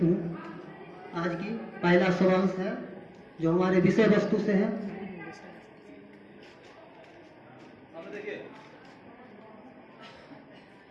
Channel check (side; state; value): both; identical; correlation 1.00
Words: हूँ। आज की पहला सवाल है जो हमारे विषय वस्तु से है।